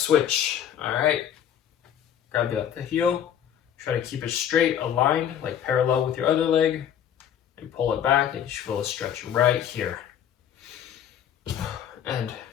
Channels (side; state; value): right; quieter; 9.5 dB